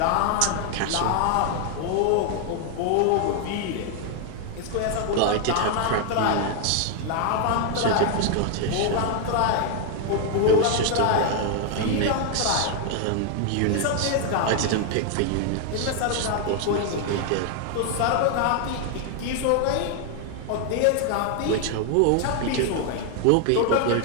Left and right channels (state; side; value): different; both; correlation 0.00